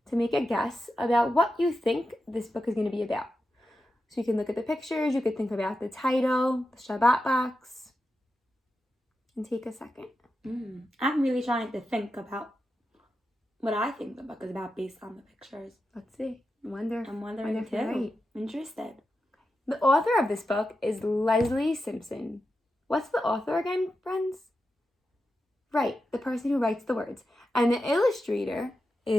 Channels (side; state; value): both; normal; correlation 0.89